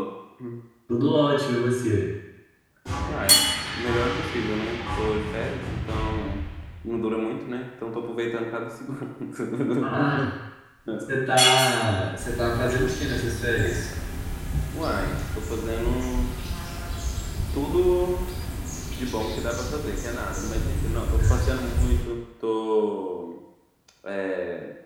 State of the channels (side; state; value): both; identical; correlation 1.00